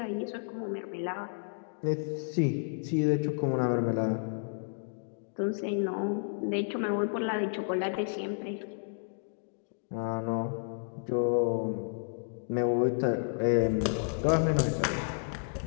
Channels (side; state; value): right; silent; digital silence